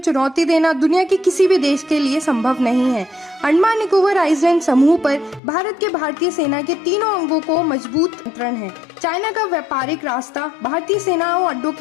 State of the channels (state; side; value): drops out; right; at 5.4 s